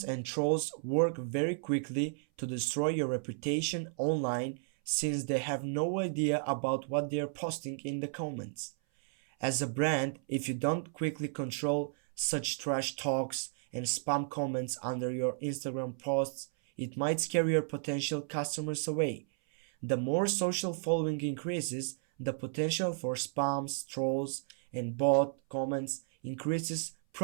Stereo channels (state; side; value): silent; left; 56 dB below the other